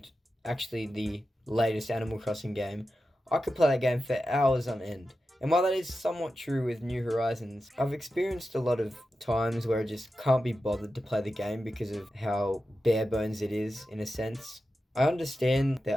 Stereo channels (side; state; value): both; normal; correlation 0.91